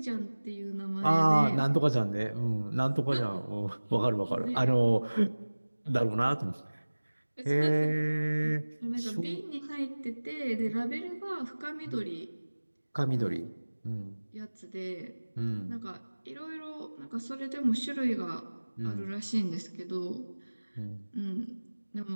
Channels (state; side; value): inverted; both; correlation -1.00